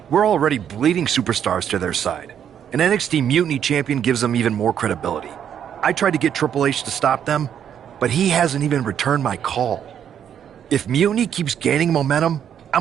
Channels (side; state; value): left; quieter; 9.0 dB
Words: We're already bleeding superstars to their side. An NXT Mutiny champion gives them even more credibility. I tried to get Triple H to stop them, but he hasn't even returned my call. If Mutiny keeps gaining momentum,